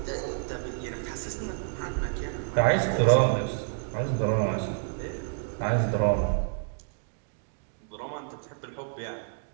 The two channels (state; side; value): silent; left; digital silence